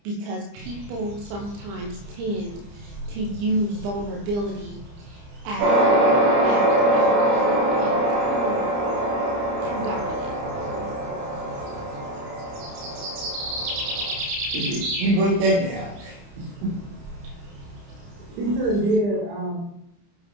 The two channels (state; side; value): late; left; 30 ms